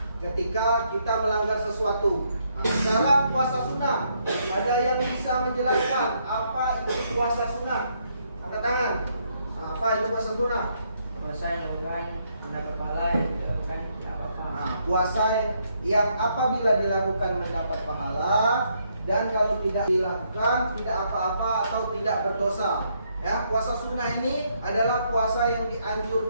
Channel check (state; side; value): inverted; both; correlation -0.74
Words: ketika kita melanggar sesuatu. Sekarang puasa sunnah. Ada yang bisa menjelaskan apa itu puasa sunnah? Angkat tangan. Apa itu puasa sunnah? Puasa yang lain anda kepala yang dilakukan tidak apa-apa. Puasa yang apabila dilakukan mendapat pahala, dan kalau tidak dilakukan tidak apa-apa atau tidak berdosa. Ya, puasa sunnah ini adalah puasa yang